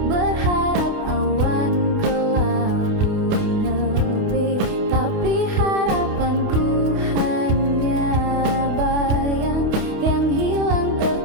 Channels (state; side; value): late; left; 28 ms